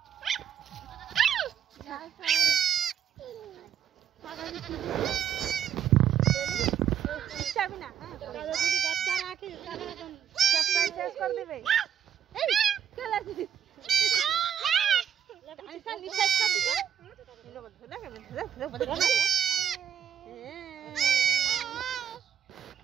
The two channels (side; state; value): left; quieter; 9.0 dB